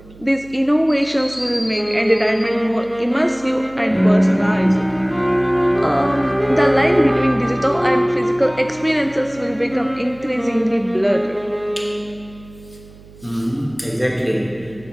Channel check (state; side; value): noise; right; hum, 22 dB below the sound